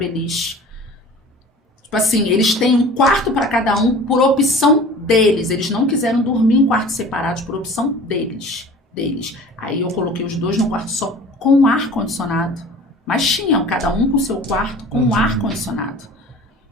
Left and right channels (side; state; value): both; normal; correlation 0.43